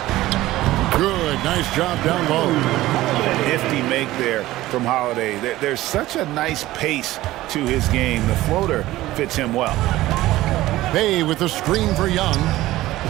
Good, nice job down low. Nifty make there from Holiday. There's such a nice pace to his game. The floater fits him well. Bay with the screen for Young.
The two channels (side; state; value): left; quieter; 16.5 dB